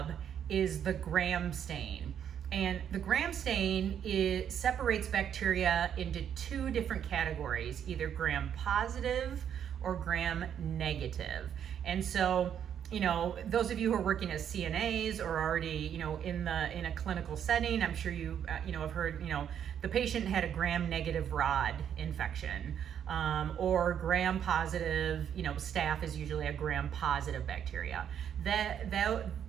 is the gram stain. And the gram stain separates bacteria into two different categories, either gram positive or gram negative. And so, those of you who are working as CNAs or already, in a clinical setting, I'm sure you, have heard, the patient had a gram negative rod infection, or gram positive, staph is usually a gram positive bacteria.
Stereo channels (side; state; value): left; quieter; 9.0 dB